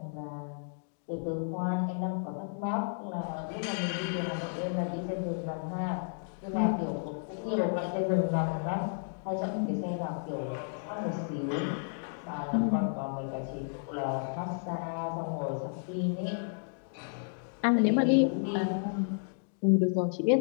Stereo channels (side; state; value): right; silent; digital silence